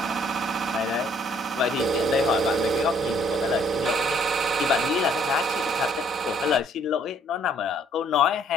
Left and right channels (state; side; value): normal; both; correlation 0.63